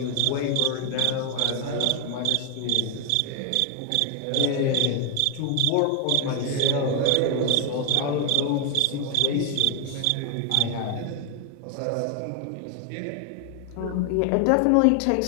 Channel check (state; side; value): different; both; correlation 0.01